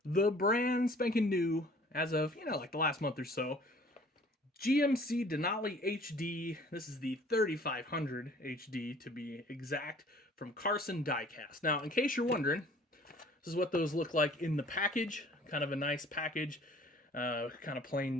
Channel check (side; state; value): both; normal; correlation 0.52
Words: the brand spanking new, as of, like the last month or so, GMC Denali HD. This is the 3500 HD to be exact, from Karson Diecast. Now, in case you're wondering, this is what those look like in the package. Kind of a nice package, kind of